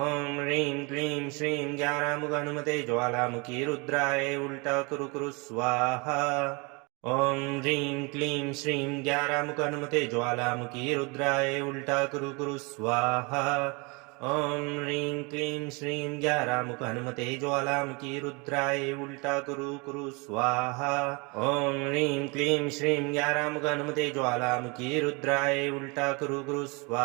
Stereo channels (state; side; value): quieter; left; 29.1 dB